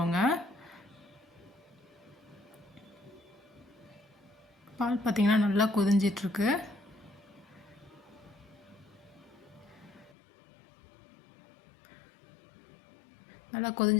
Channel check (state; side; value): drops out; right; at 10.2 s